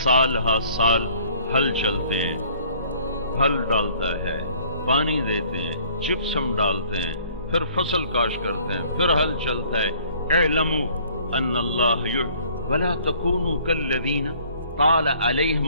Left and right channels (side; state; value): both; inverted; correlation -0.57